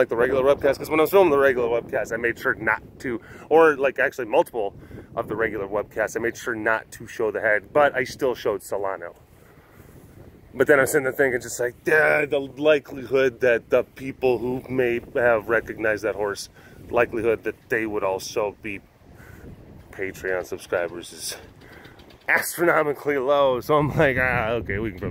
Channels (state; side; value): identical; both; correlation 1.00